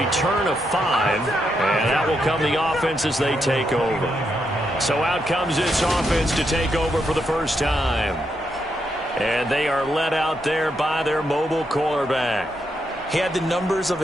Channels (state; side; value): normal; both; correlation 0.81